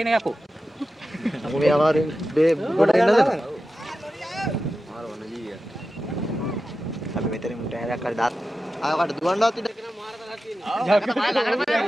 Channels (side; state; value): both; normal; correlation 0.92